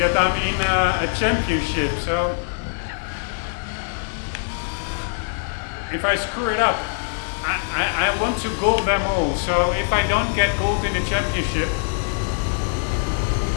I'm in a championship, so if I screw it up, I want to gold them all. So if I don't get gold in the championship,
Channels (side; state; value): right; silent; digital silence